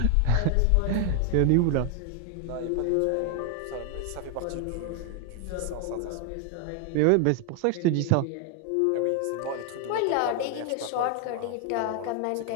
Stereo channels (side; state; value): both; different; correlation 0.00